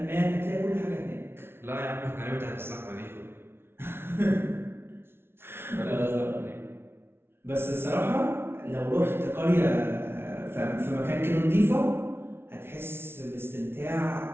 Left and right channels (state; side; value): late; left; 0.12 ms